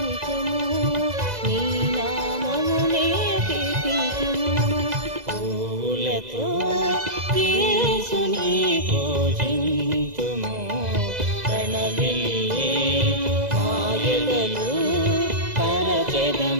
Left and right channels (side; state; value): left; late; 2.0 ms